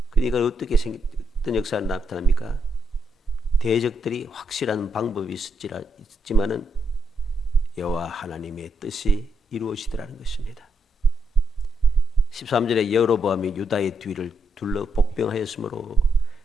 그러니까 어떻게 어떤 역사가 나타납니까? 대적들이 확실한 방법이 있지만은 여호와 하나님의 뜻이 이루어지더라는 것입니다. 13절에 여로보암이 유다의 뒤를 둘러 복병하였으므로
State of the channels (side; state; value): both; normal; correlation 0.80